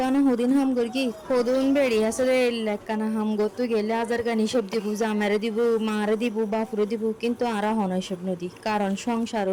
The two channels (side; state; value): both; identical; correlation 1.00